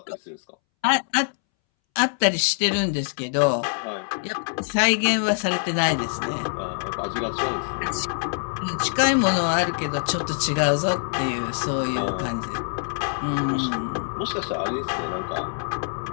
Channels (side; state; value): right; silent; 62 dB below the other